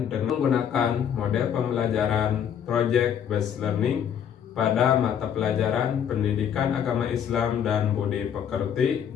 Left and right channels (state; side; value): quieter; right; 8.7 dB